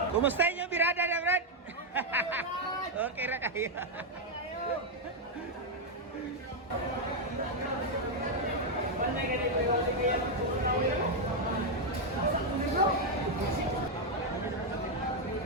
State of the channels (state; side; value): normal; both; correlation 0.01